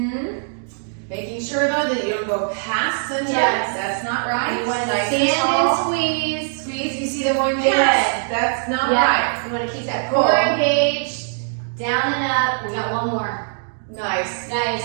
Making sure though that you don't go past the chest. Yes. That's not right. You want to Nice stand tall. and squeeze. Squeeze. You see them going Good. past. That's not right. You want to keep that core engaged, down and up. We got one more. Nice.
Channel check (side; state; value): left; silent; digital silence